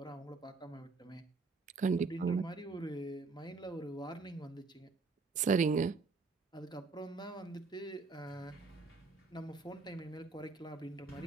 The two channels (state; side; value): quieter; left; 4.2 dB